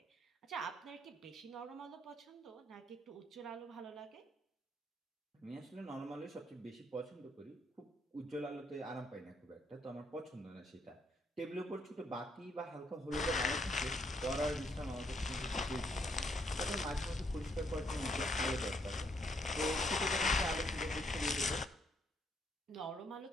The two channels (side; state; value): both; normal; correlation 0.72